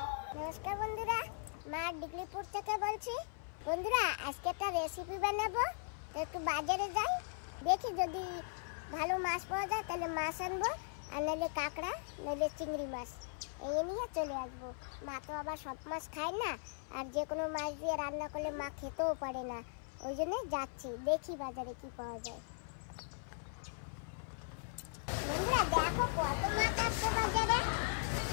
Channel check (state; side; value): silent; right; 52 dB below the other